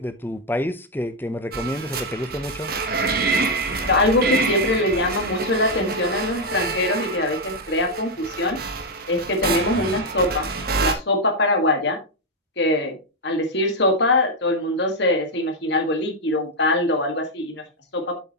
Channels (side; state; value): both; normal; correlation 0.02